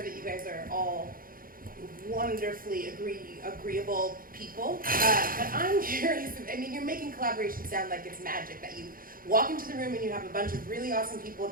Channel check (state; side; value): late; left; 0.41 ms